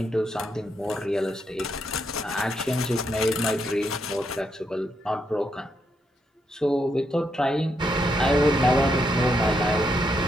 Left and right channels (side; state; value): both; normal; correlation 0.79